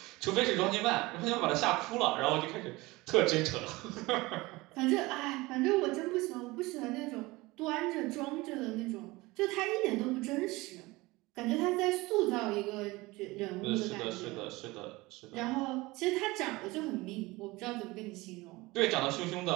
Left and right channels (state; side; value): quieter; left; 21.5 dB